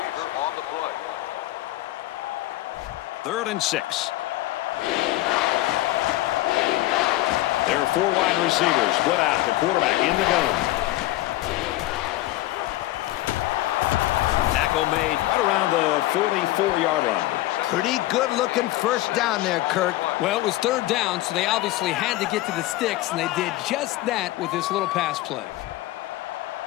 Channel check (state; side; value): quieter; right; 16.8 dB